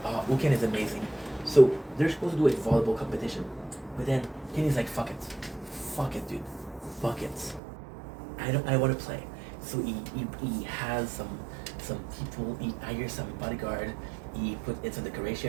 is amazing. So they're supposed to do a volleyball competition, but then Kenny's like, fuck it, dude, fuck it. I want to play. So he has some people. He hires some bodyguard. He put in some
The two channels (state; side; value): drops out; left; at 7.6 s